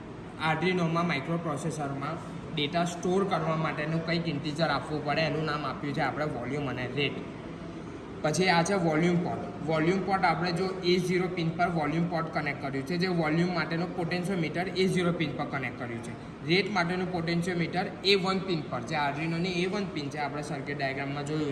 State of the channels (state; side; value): identical; both; correlation 1.00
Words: આર્ડિનોમાં માઇક્રો પ્રોસેસરમાં ડેટા સ્ટોર કરવા માટેનું કંઈક ઇન્ટીજર આપવું પડે, એનું નામ આપ્યું છે આપણે વોલ્યુમ અને રેટ. પછી આ છે વોલ્યુમ પોર્ટ. વોલ્યુમ પોર્ટ આપણે જો A0 પિન પર વોલ્યુમ પોર્ટ કનેક્ટ કર્યું છે, જે વોલ્યુમ માટેનું પોટેન્શિયોમીટર A0 પિન પર કનેક્ટ કર્યું છે. રેટ માટેનું પોટેન્શિયોમીટર A1 પિન પર, જે આર્ડિનોની A1 પિન છે આપણે સર્કિટ ડાયાગ્રામમાં